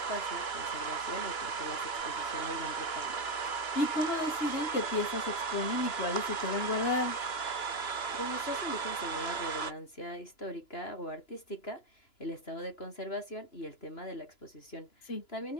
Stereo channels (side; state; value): right; late; 2.9 ms